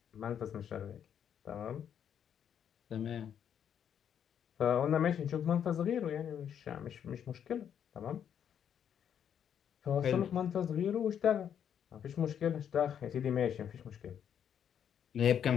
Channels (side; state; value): right; quieter; 8.8 dB